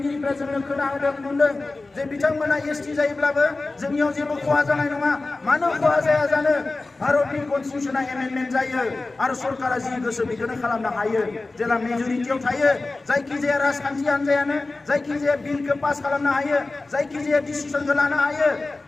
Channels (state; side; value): quieter; right; 3.3 dB